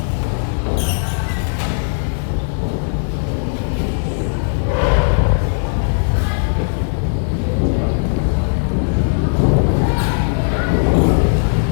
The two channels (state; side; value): silent; right; 68 dB below the other